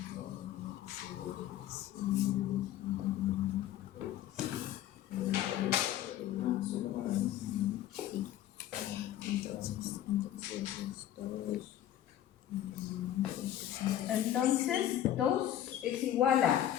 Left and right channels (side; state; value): right; quieter; 12.0 dB